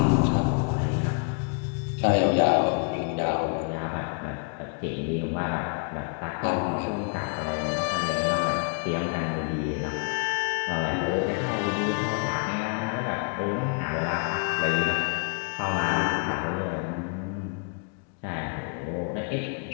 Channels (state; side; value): quieter; right; 39.4 dB